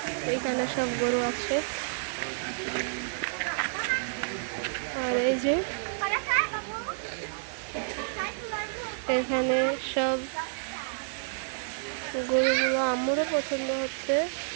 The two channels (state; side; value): silent; left; 58 dB below the other